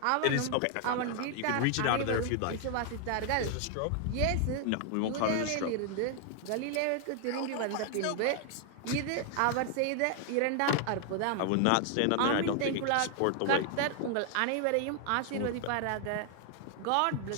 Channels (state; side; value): different; both; correlation 0.00